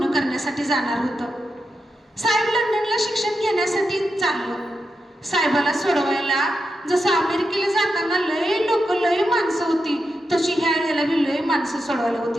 करण्यासाठी जाणार होतं. साहेब लंडनला शिक्षण घेण्यासाठी चाललं. साहेबाला सोडवायला जसं अमेरिकेला जाताना लय लोक, लय माणसं होती, तशी ह्या वेळेला बी लय माणसं सोडवायला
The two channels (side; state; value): both; normal; correlation 0.87